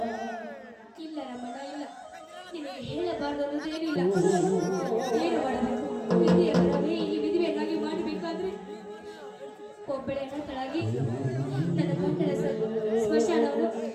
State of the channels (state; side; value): identical; both; correlation 1.00